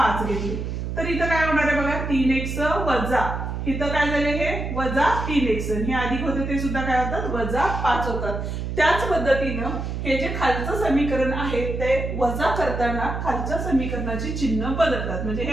घेतले तर इथं काय होणार आहे बघा, 3x वजा इथं काय झाले हे वजा 3x, हे अधिक होते ते सुद्धा काय होतात, वजा 5 होतात. त्याच पद्धतीनं हे जे खालचं समीकरण आहे ते वजा करताना खालच्या समीकरणाची चिन्ह बदलतात. म्हणजे हे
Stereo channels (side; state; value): right; noise; hum, 4 dB below the sound